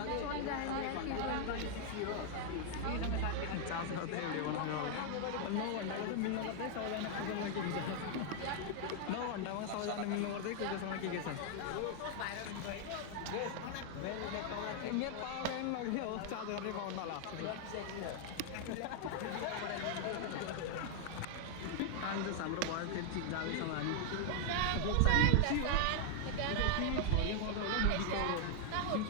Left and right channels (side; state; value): both; different; correlation 0.00